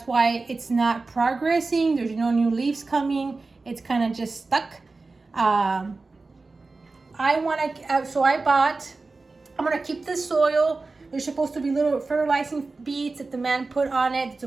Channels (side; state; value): left; quieter; 3.7 dB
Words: why it's not progressing. There's no new leaves coming. It's kind of just stuck. I'm gonna keep this soil. There's supposed to be little fertilizing beads that the man put on it. It's